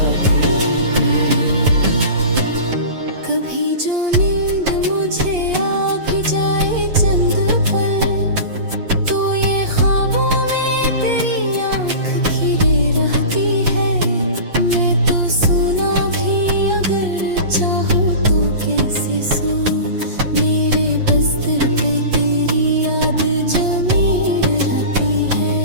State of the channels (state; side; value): late; left; 8.5 ms